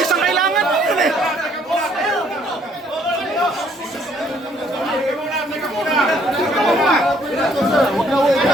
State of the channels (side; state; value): both; normal; correlation 0.64